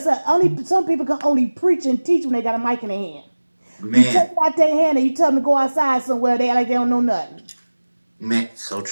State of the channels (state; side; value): inverted; both; correlation -1.00